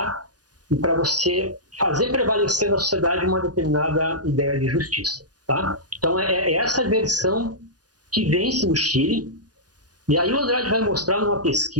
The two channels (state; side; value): late; left; 0.69 ms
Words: e para você fazer prevalecer na sociedade uma determinada ideia de justiça. Tá? Então, é essa versão que vence no Chile. E aí o Andrade vai mostrar numa